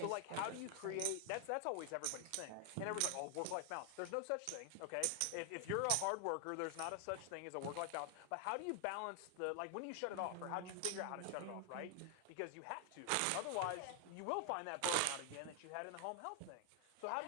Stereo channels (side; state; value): both; different; correlation 0.00